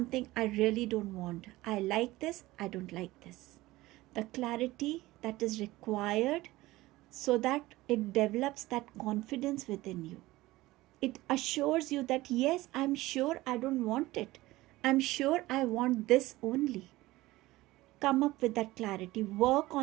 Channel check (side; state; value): left; quieter; 18.4 dB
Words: I really don't want. I like this, I don't like this. The clarity that is required so that it develops that confidence within you. It assures you that yes, I'm sure I don't want it. I'm sure I want this only. Come up with that clarity, work